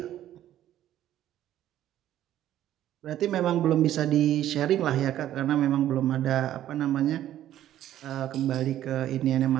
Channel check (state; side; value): quieter; left; 12.3 dB